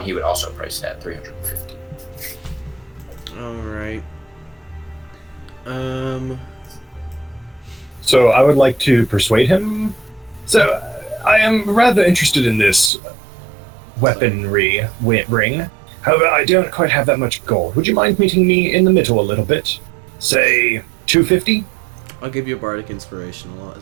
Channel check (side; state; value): left; drops out; at 12.9 s